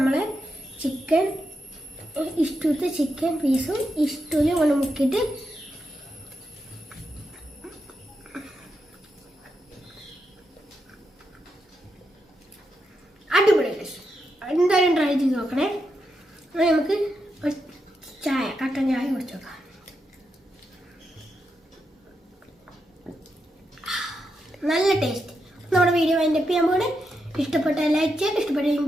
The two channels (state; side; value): normal; both; correlation 0.84